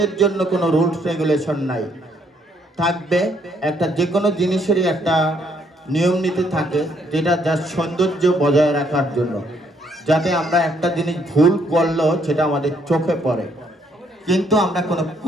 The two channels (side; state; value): both; normal; correlation 0.69